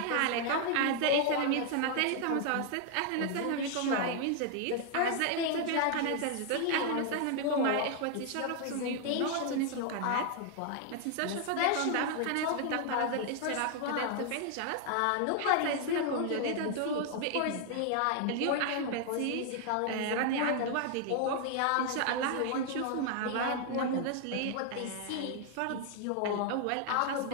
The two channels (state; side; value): different; both; correlation 0.00